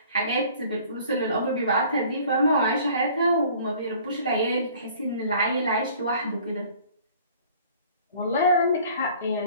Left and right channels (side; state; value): both; inverted; correlation -0.52